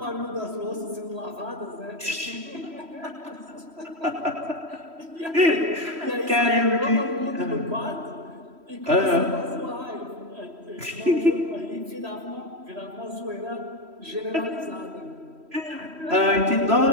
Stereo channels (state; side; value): late; left; 3.1 ms